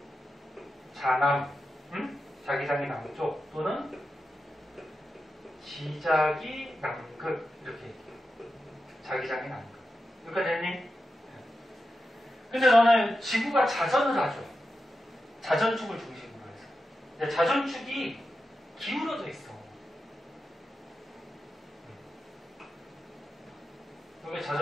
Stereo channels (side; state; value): both; normal; correlation 0.90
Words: 자남. 자기장이 남쪽 또는 지자기 남극 이렇게 자기장이 남극. 여기까지 했니? 근데 너는 지구가 자전을 하죠. 자전축을 중심으로 해서. 근데 자전축이 기울어져 있어. 이게